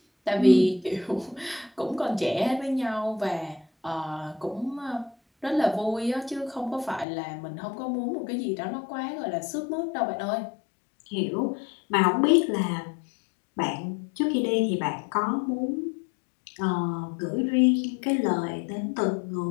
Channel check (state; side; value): drops out; right; at 7.1 s